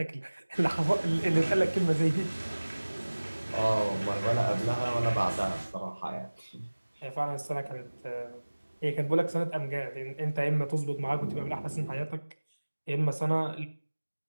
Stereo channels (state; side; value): inverted; both; correlation -1.00